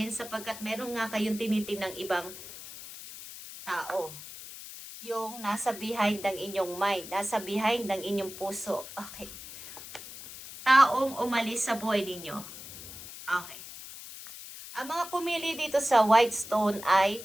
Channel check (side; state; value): left; noise; hiss, 13 dB below the sound